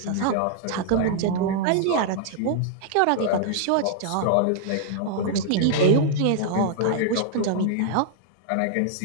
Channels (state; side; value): different; both; correlation -0.01